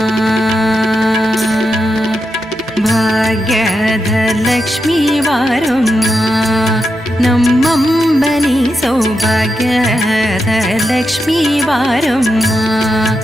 ಭಾಗ್ಯದ ಲಕ್ಷ್ಮೀ ಬಾರಮ್ಮ, ನಮ್ಮಂಬನಿ ಸೌಭಾಗ್ಯದ ಲಕ್ಷ್ಮೀ ಬಾರಮ್ಮ,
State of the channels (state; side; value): noise; right; hum, 27 dB below the sound